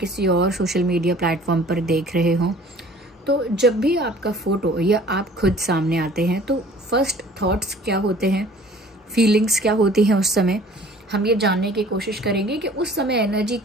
और सोशल मीडिया प्लेटफॉर्म पर देख रहे हों, तो जब भी आपका फोटो या आप खुद सामने आते हैं तो फर्स्ट थॉट्स क्या होते हैं, फीलिंग्स क्या होती हैं उस समय, हम ये जानने की कोशिश करेंगे कि उस समय एनर्जी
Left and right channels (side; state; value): both; normal; correlation 0.50